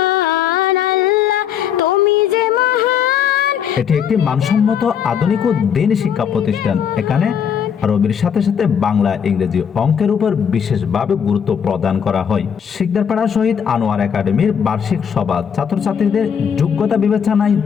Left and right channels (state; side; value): quieter; right; 7.9 dB